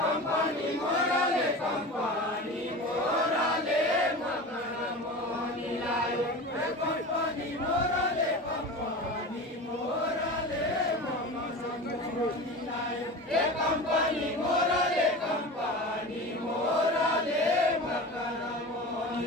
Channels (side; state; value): both; normal; correlation 0.31